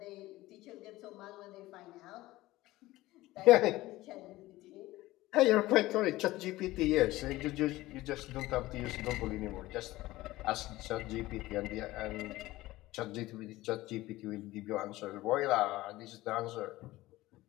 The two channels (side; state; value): right; quieter; 17.7 dB